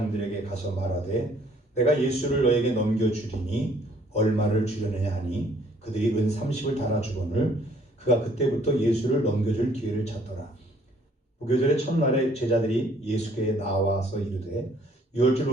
가서 말하되 내가 예수를 너에게 넘겨주리니 얼마를 주려느냐 하니 그들이 은 30을 달아주거늘 그가 그때부터 예수를 넘겨줄 기회를 찾더라. 무교절의 첫날에 제자들이 예수께 나와서 이르되 유월절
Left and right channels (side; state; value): both; normal; correlation 0.61